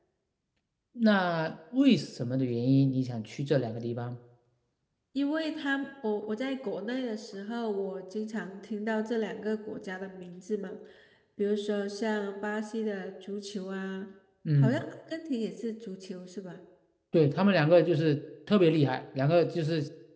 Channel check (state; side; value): identical; both; correlation 1.00